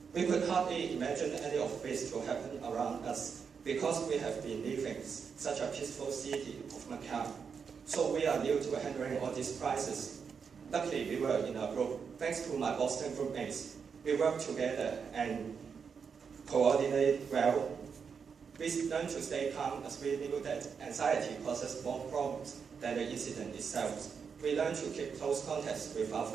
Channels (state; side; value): quieter; left; 6.2 dB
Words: We could hardly imagine any of this to happen around us. because we have been living such a peaceful city of Macau. So we are new to handling all these crises. Luckily, we were in a group. Thanks to my Boston groupmates, we work together and coordinate well. We learned to stay calm as we knew that anxiety causes more problems than the incident itself. We learned to keep close contacts with our